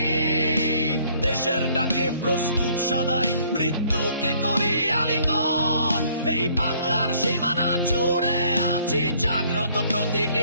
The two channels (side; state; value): both; inverted; correlation -0.62